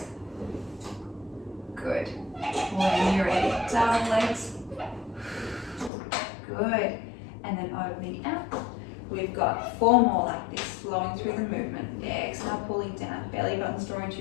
Good. When you're ready, double legs. Good. And then opening out. We've got 4 more like this, flowing through the movement. Exhale, pulling down. Belly buttons drawing to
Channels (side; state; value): right; drops out; at 5.9 s